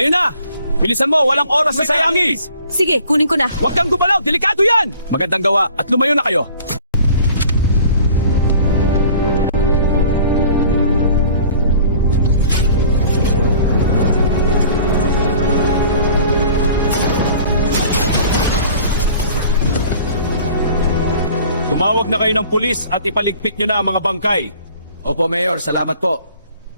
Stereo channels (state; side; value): inverted; both; correlation -0.49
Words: na! Bilisan mo, walang oras na sayangin! Sige, kunin ko na. Huwag kang gumalaw, delikado yan! Magandang gawa at lumayo na kayo! Tumawag na kayo ng pulis at ipaligpit nyo na ang mga bangkay. Opo, Mayor. Salamat po.